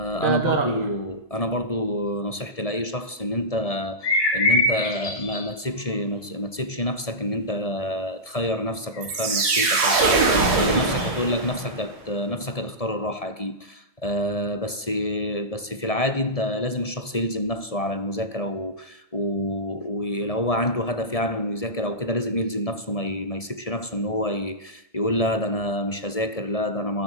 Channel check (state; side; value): late; right; 1.7 ms